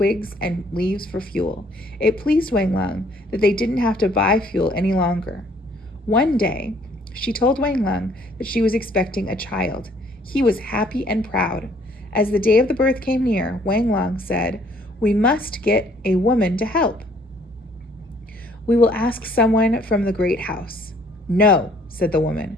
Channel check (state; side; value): normal; both; correlation 0.61